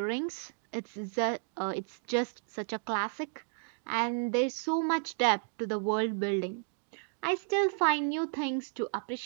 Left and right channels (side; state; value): left; silent; digital silence